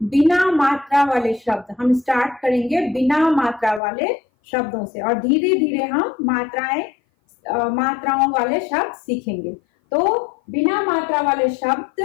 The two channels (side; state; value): right; drops out; at 3.8 s